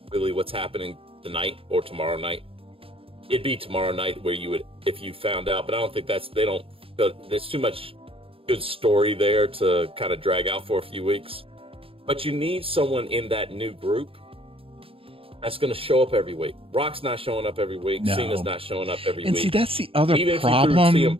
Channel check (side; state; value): left; late; 0.27 ms